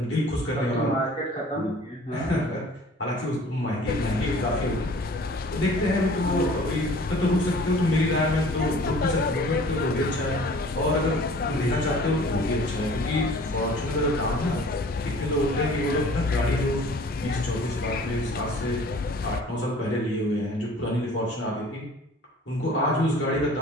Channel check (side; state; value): both; normal; correlation 0.48